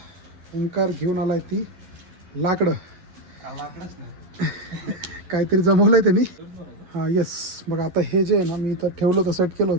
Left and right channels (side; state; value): left; late; 11 ms